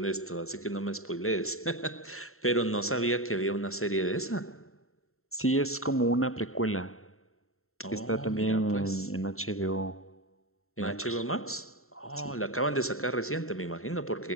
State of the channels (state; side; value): late; right; 0.62 ms